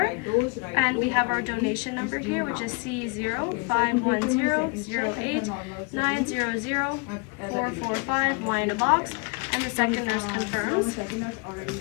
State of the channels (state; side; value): quieter; right; 31.8 dB